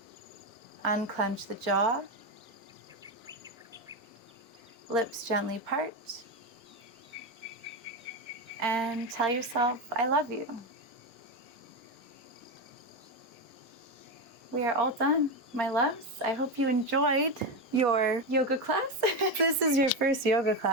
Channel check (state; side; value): normal; both; correlation 0.13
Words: Unclench the jaw. Lips gently part. And tell yourself, I love you. We are all done, my loves. I hope you enjoyed your yoga class. If this is your first yoga